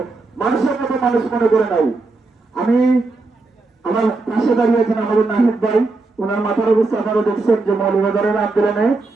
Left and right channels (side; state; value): left; quieter; 3.5 dB